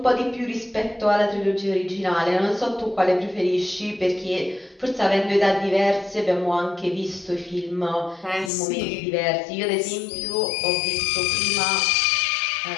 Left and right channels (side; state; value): right; drops out; at 8.5 s